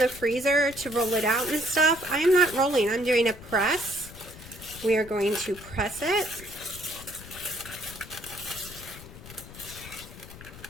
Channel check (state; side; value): noise; left; rumble, 16 dB below the sound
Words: freezer to roll it out and stuff. I am not rolling. I'm doing a press. We are going to press it.